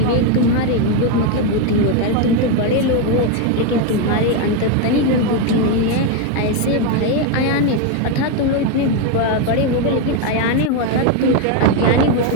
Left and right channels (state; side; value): different; both; correlation 0.02